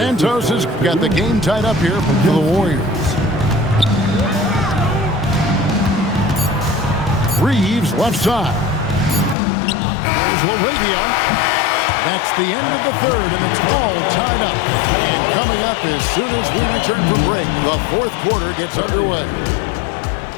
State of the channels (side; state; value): right; drops out; at 9.3 s